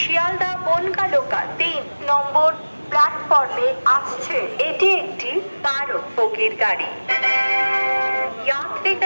বনগা লোকাল 3 নম্বর প্ল্যাটফর্মে আসছে। এটি একটি 12 বগির গাড়ি।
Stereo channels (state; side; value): inverted; both; correlation -1.00